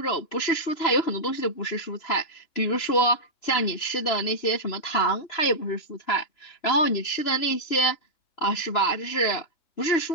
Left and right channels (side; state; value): right; late; 3.0 ms